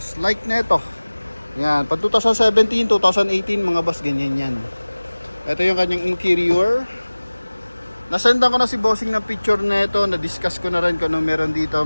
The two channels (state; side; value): inverted; both; correlation -1.00